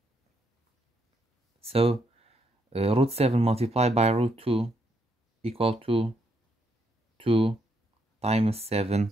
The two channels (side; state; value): both; normal; correlation 0.76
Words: So root 7 multiplied by root 2 equal to 2 times